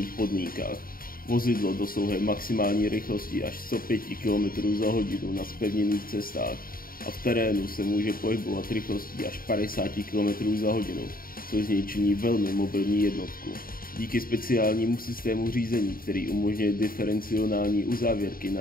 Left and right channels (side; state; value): right; late; 0.42 ms